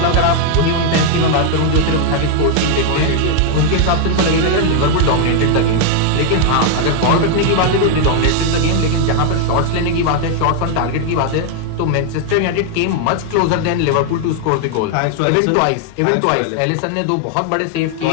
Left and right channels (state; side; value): different; both; correlation 0.00